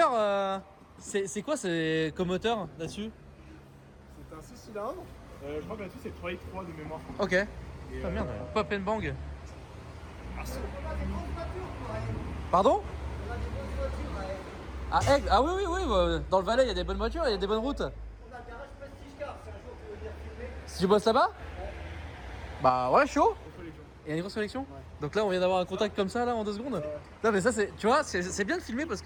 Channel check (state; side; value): identical; both; correlation 1.00